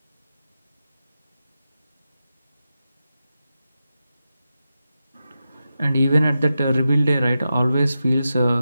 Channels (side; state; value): both; inverted; correlation -0.90